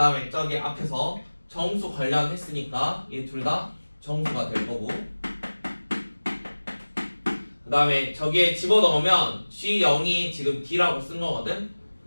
저기 앞에서 정수 관련했으니까 얘 둘 다 정수가 될 거고, 그 다음에 저기에 집어넣으면 G0이 지금 D라고 쓴 거거든.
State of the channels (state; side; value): inverted; both; correlation -1.00